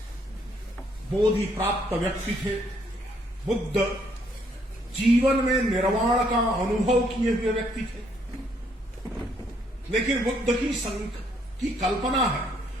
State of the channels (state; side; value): normal; both; correlation 0.69